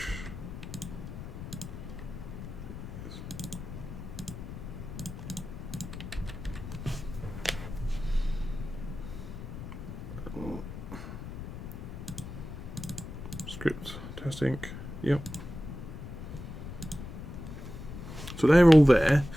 script testing, yep. So they're all there,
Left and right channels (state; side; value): noise; left; rumble, 9 dB below the sound